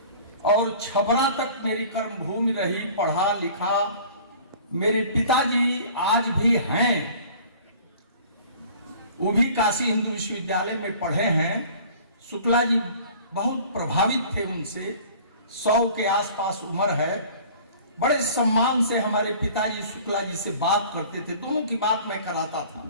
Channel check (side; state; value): both; inverted; correlation -0.47